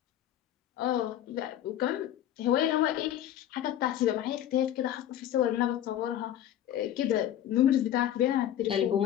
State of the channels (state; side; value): quieter; right; 11.4 dB